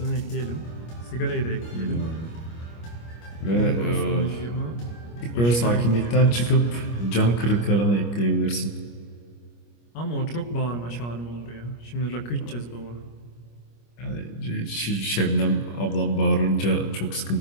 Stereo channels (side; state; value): right; late; 25 ms